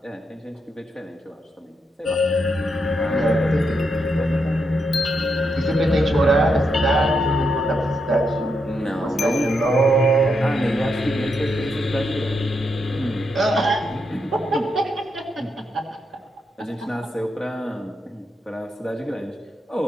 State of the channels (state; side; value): normal; both; correlation 0.82